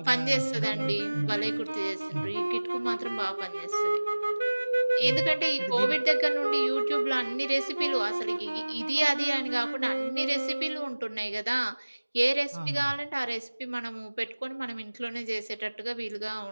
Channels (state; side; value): inverted; both; correlation -1.00